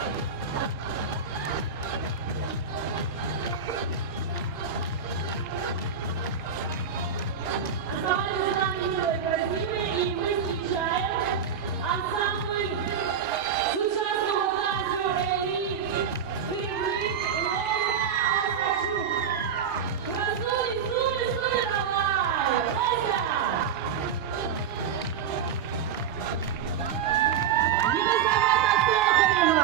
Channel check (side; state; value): left; quieter; 7.0 dB